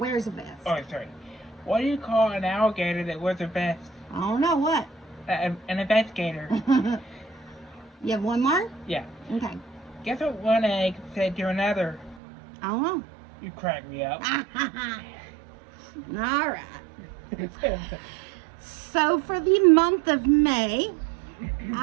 a vest. Oh, sorry. What do you call an alligator that wears a vest? I don't know what. An investigator. You have one more? Yeah. Okay. Guess what one egg said to another? I don't know. You crack me up. All right. So for the month of May,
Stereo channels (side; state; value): left; drops out; at 12.2 s